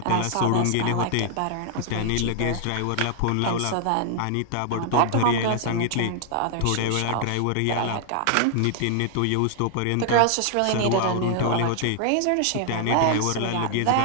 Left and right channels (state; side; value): different; both; correlation -0.01